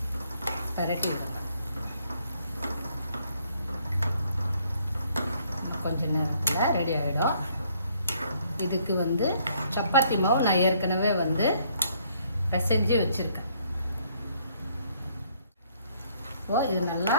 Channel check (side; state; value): both; inverted; correlation -0.66